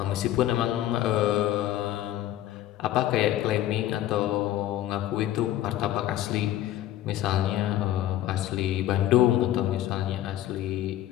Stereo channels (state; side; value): quieter; right; 13.3 dB